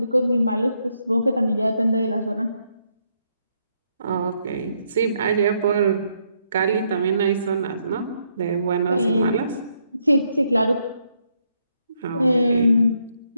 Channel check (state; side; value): inverted; both; correlation -0.76